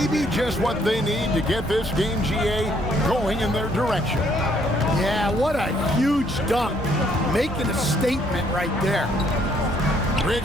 just what they need to get this game, GA, going in their direction. Yeah, what a huge dunk. Making a statement right there.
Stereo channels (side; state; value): both; normal; correlation 0.67